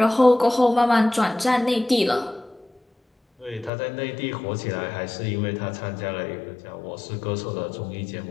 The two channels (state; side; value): drops out; right; at 3.7 s